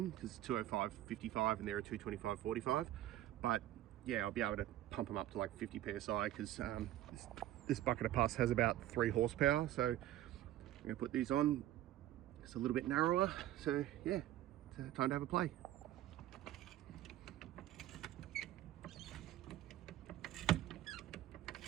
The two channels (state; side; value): quieter; left; 13.6 dB